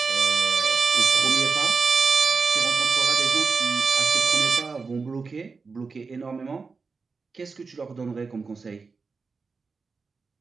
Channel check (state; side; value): quieter; left; 4.6 dB